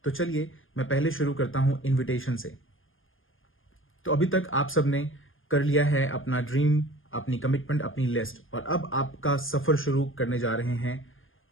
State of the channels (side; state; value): right; late; 0.59 ms